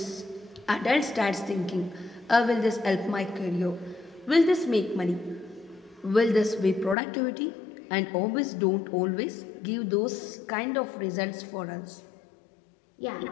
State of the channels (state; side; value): drops out; right; at 7.0 s